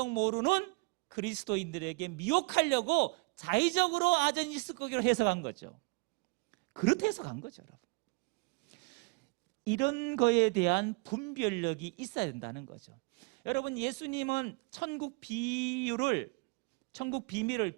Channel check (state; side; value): quieter; left; 30.0 dB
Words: 모르는 그리스도인들에게 미혹하려고 자의적으로 아전이스거기로 해석한 거죠. 그렇게 해석한 거죠, 여러분. 이런 거에 대한 분별력이 있어야 된다는 거죠. 여러분, 예수님은 천국 비밀을